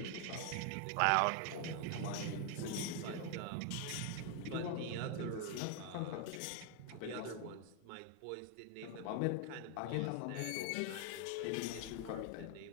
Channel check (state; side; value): different; both; correlation 0.01